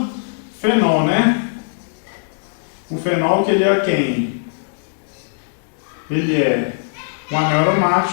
fenol, né? O fenol, que ele é quem? Ele é um anel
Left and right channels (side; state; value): right; silent; digital silence